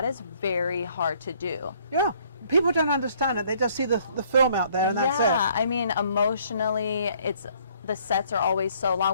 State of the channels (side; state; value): both; inverted; correlation -0.62